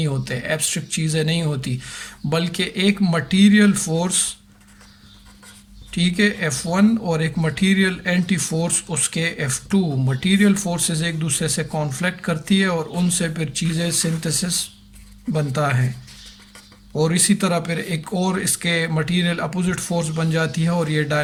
ہوتے، ایبسٹریکٹ چیزیں نہیں ہوتی، بلکہ ایک مٹیریل فورس، ٹھیک ہے، F1، اور ایک مٹیریل اینٹی فورس اس کے F2. مٹیریل فورسز ایک دوسرے سے کانفلکٹ کرتی ہے اور ان سے پھر چیزیں سنتھسس بنتا ہے، اور اسی طرح پھر ایک اور اس کے مٹیریل اپوزٹ فورس بن جاتی ہے، اور یہ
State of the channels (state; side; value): identical; both; correlation 1.00